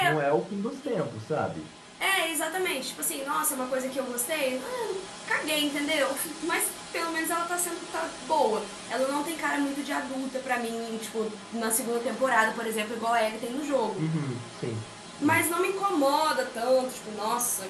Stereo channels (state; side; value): identical; both; correlation 1.00